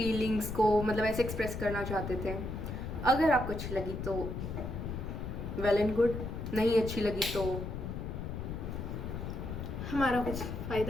को मतलब ऐसे एक्सप्रेस करना चाहते थे। अगर आपको अच्छी लगी तो वेल एंड गुड, नहीं अच्छी लगी तो हमारा कुछ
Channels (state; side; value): noise; left; rumble, 5 dB below the sound